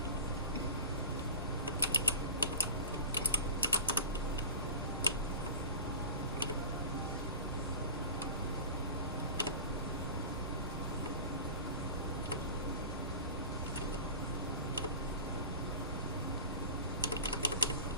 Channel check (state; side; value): inverted; both; correlation -0.35